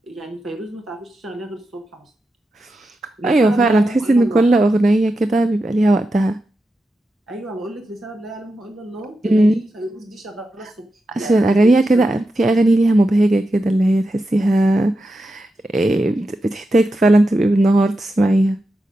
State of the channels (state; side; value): normal; both; correlation 0.89